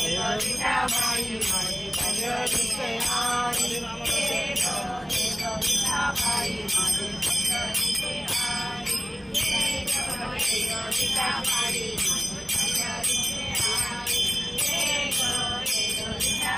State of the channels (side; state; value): both; identical; correlation 1.00